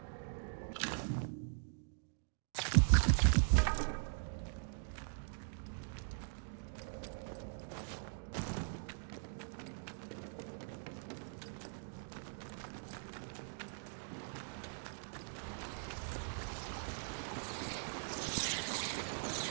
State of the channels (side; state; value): left; silent; digital silence